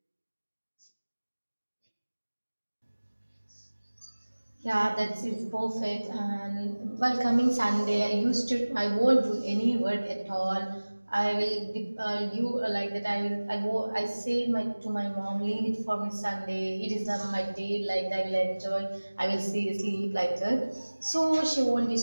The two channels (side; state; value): both; inverted; correlation -1.00